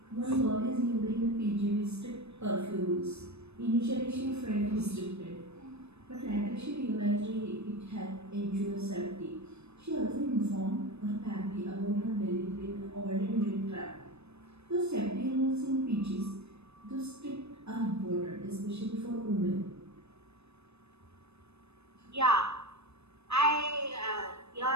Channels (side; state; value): left; late; 0.80 ms